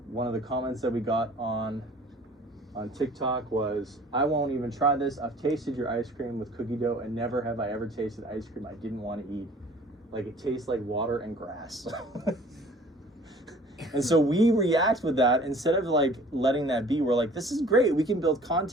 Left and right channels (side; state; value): both; normal; correlation 0.50